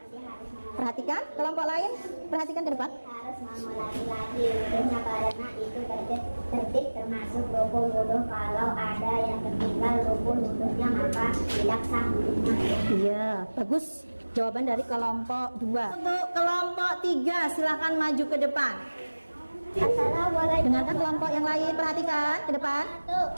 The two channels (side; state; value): both; inverted; correlation -1.00